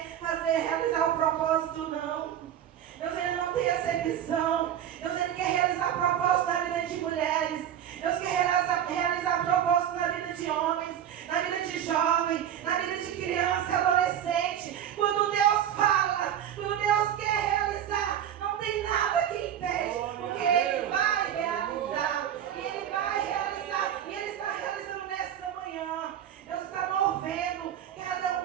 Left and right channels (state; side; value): quieter; left; 10.1 dB